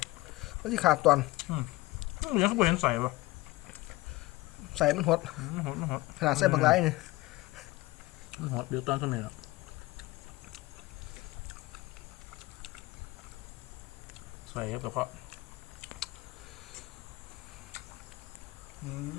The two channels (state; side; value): quieter; right; 19.9 dB